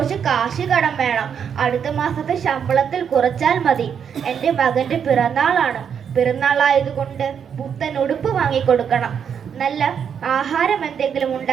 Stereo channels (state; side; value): quieter; left; 7.6 dB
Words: കാശ് കടം വേണം. അടുത്ത മാസത്തെ ശമ്പളത്തിൽ കുറച്ചാൽ മതി. എൻ്റെ മകൻ്റെ പിറന്നാളാണ്. പിറന്നാളായതുകൊണ്ട് പുത്തൻ ഉടുപ്പ് വാങ്ങിക്കൊടുക്കണം. നല്ല ആഹാരം എന്തെങ്കിലും